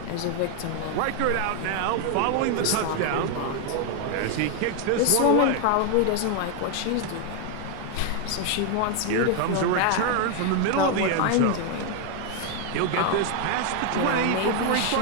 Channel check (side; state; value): both; different; correlation 0.01